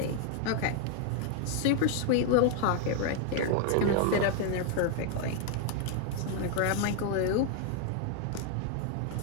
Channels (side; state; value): both; different; correlation 0.00